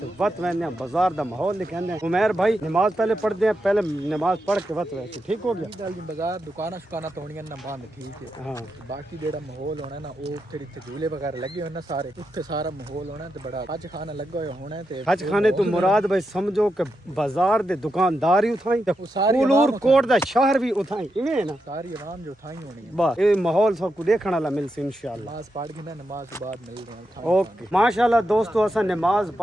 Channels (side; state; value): both; normal; correlation 0.86